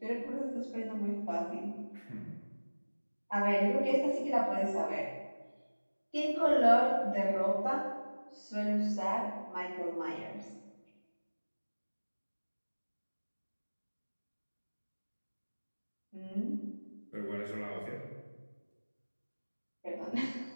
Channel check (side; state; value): both; inverted; correlation -1.00